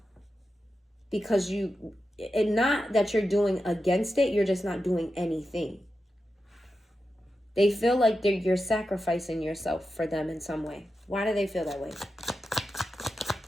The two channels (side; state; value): both; normal; correlation 0.90